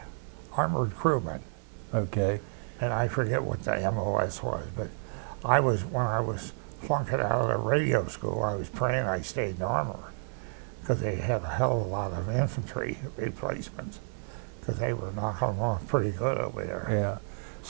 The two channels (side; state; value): left; silent; 56 dB below the other